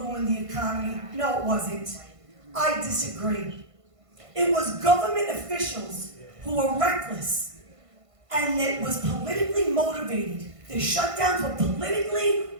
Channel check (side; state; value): left; late; 1.5 ms